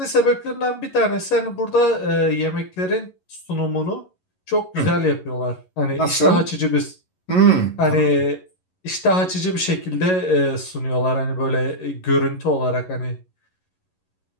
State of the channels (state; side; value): late; right; 11 ms